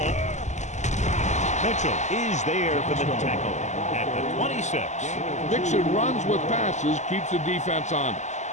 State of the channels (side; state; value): right; late; 0.34 ms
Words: Mitchell is there for the tackle at the 26. Mixon runs with passes, keeps the defense honest.